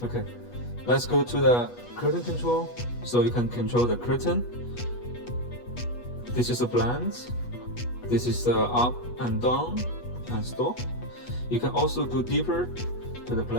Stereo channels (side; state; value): right; late; 8.2 ms